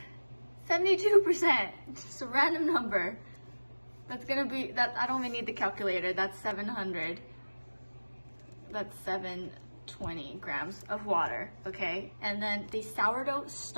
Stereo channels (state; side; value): inverted; both; correlation -1.00